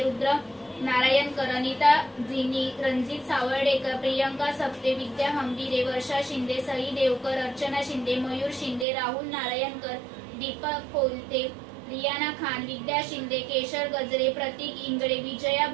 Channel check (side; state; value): left; drops out; at 8.8 s